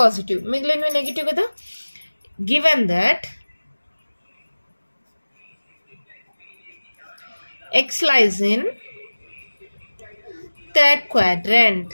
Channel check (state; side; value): inverted; both; correlation -1.00